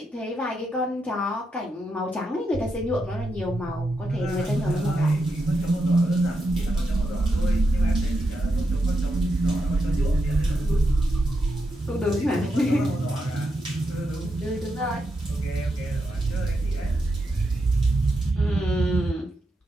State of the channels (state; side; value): normal; both; correlation 0.85